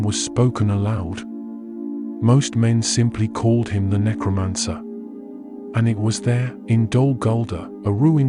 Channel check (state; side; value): identical; both; correlation 1.00